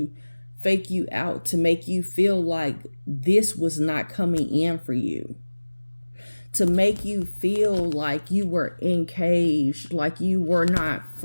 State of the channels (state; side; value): inverted; both; correlation -1.00